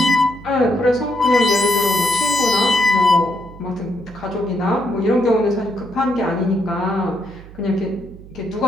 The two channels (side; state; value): right; noise; hum, 18 dB below the sound